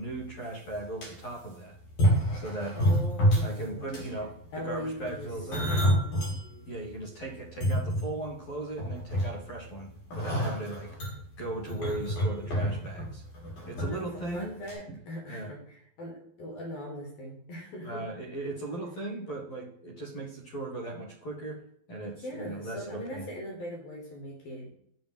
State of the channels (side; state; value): right; late; 12 ms